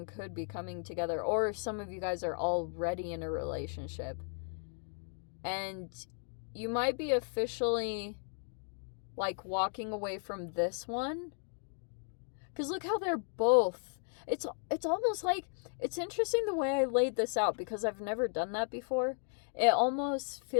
could be coming together, or some of you guys are already in a relationship and you might be officially like walking away from this one. Because look how they're both, it's almost like, it's interesting the way I laid this out, because I've never done that before. It almost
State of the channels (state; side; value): silent; right; 54 dB below the other